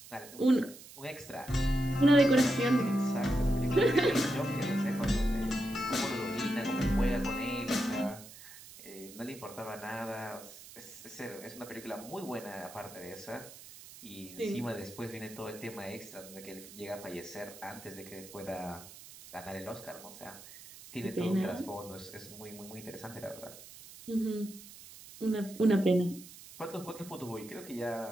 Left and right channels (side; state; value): right; noise; hiss, 17 dB below the sound